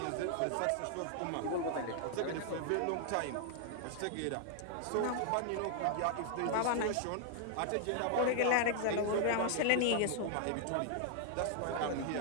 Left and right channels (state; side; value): different; both; correlation -0.01